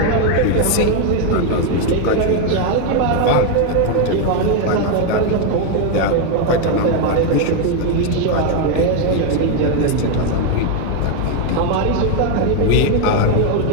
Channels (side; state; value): both; different; correlation 0.01